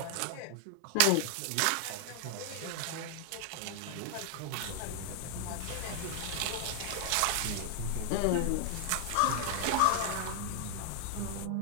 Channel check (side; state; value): both; different; correlation 0.00